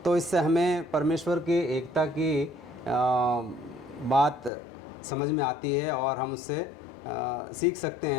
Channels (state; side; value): drops out; right; at 4.5 s